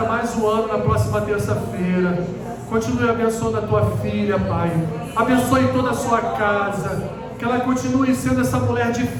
mais um ano na próxima terça-feira. Continue abençoando a Tua filha, Pai. Abençoe toda a sua casa. Que ela continue sendo essa mulher de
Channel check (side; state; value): both; identical; correlation 1.00